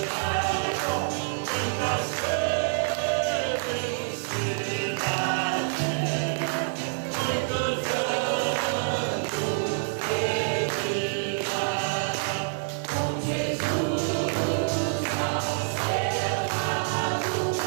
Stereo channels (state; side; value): silent; left; digital silence